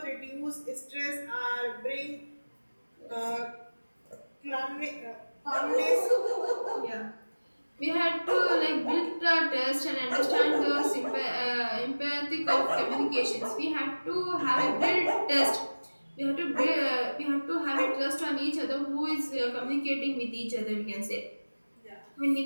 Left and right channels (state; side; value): inverted; both; correlation -1.00